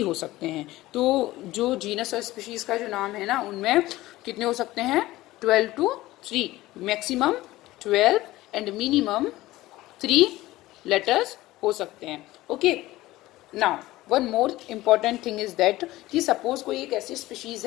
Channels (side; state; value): right; quieter; 17.4 dB